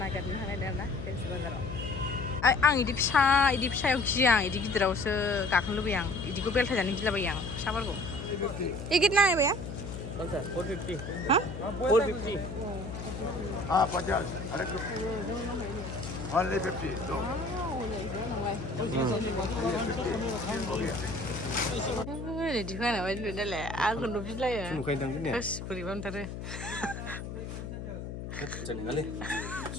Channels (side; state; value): left; noise; hum, 8 dB below the sound